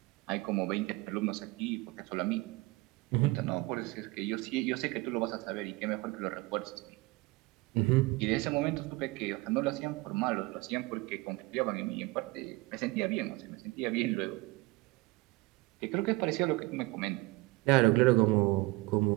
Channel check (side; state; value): left; quieter; 22.6 dB